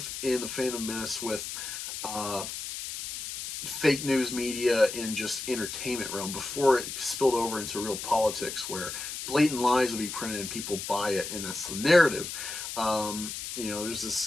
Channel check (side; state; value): left; noise; hiss, 7 dB below the sound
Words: in the Phantom Menace with fake news media in just entertainment realm, before it spilled over into real politics, where blatant lies would be printed and people buy it, and that's the narrative.